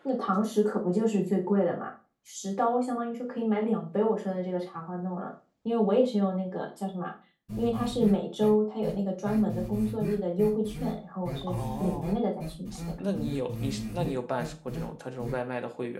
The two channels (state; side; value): identical; both; correlation 1.00